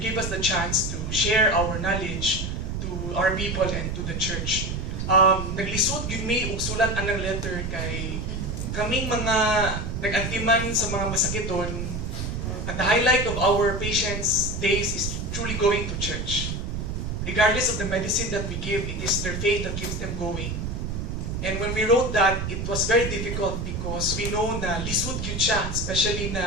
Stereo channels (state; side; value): noise; right; rumble, 3 dB below the sound